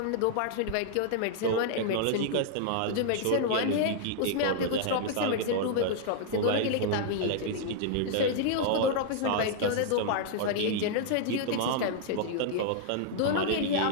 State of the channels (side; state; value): both; different; correlation -0.01